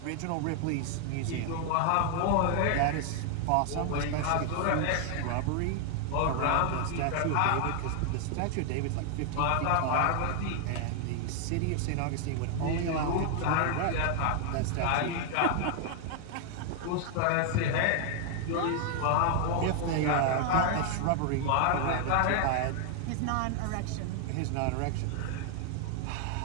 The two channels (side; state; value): both; different; correlation 0.00